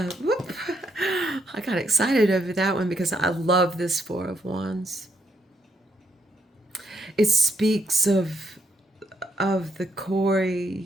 whoop. I got excited over that one because I love this Four of Wands. It speaks of the core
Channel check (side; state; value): both; normal; correlation 0.75